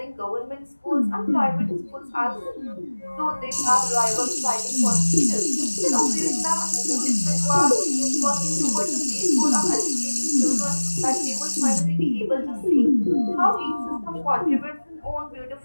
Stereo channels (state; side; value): inverted; both; correlation -1.00